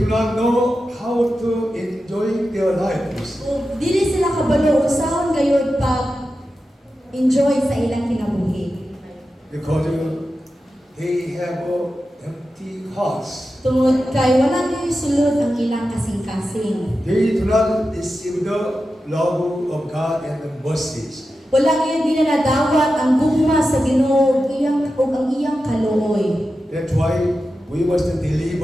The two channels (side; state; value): both; normal; correlation 0.91